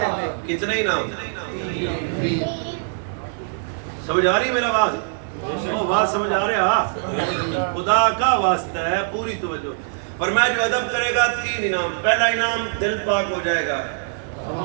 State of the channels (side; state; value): left; silent; digital silence